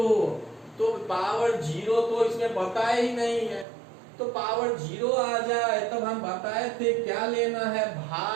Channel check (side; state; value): left; drops out; at 3.7 s